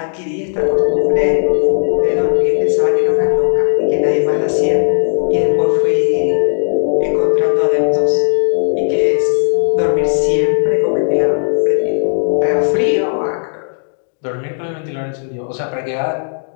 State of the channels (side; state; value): right; silent; digital silence